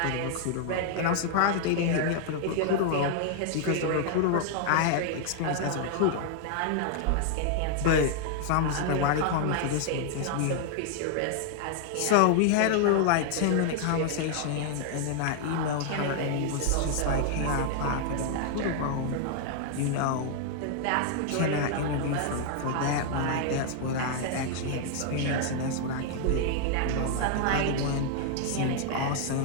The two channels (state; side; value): different; both; correlation 0.00